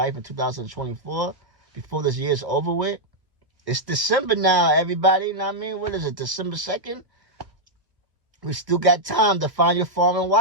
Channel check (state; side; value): late; left; 1.3 ms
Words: in 2024, before this year's over with. It's December now, everybody, you know what I mean? What is it, December 2nd? We still got time to find your foreign